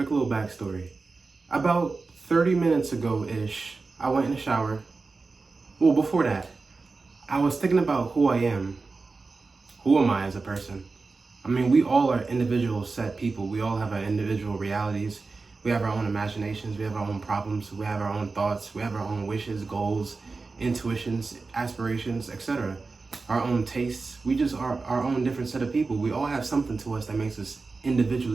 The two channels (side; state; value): left; quieter; 4.0 dB